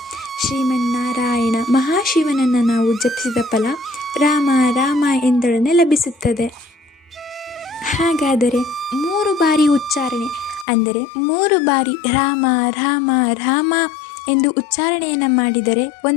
ಶ್ರೀಮನ್ನಾರಾಯಣ ಮಹಾಶಿವನನ್ನು ನಾವು ಜಪಿಸಿದ ಫಲ ರಾಮ ರಾಮ ಎಂದೊಡನೆ ಲಭಿಸುತ್ತದೆ. ಹಾಗಾದರೆ 3 ಬಾರಿ ಉಚ್ಚಾರಣೆ ಅಂದರೆ 3 ಬಾರಿ ರಾಮ ರಾಮ ರಾಮ ಎಂದು ಉಚ್ಚಾರಣೆಯನ್ನು ಮಾಡಿದರೆ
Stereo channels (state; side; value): drops out; right; at 10.7 s